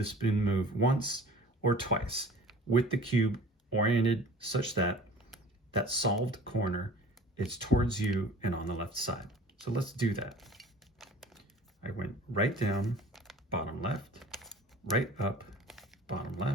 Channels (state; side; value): normal; both; correlation 0.44